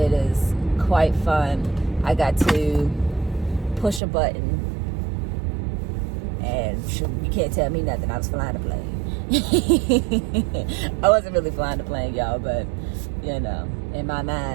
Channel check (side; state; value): left; drops out; at 4.0 s